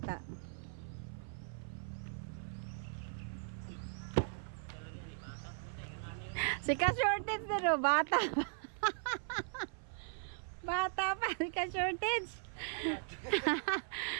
Si ka-shortage din, no? Bata pa. Bata pa, si ka-shortage.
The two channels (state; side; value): silent; left; 52 dB below the other